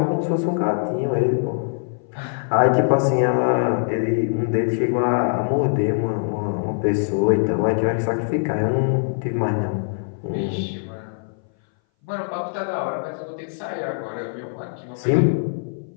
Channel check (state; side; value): silent; right; 59 dB below the other